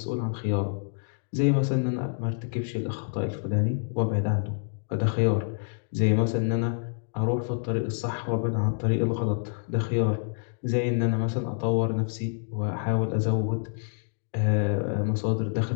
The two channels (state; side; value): silent; right; digital silence